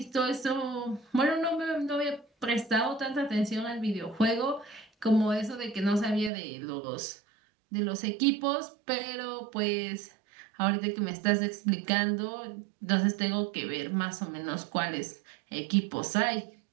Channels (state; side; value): drops out; left; at 6.3 s